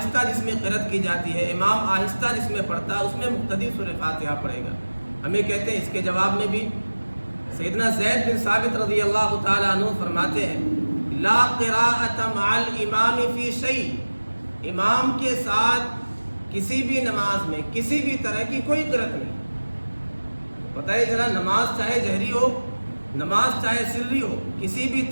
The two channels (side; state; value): both; inverted; correlation -1.00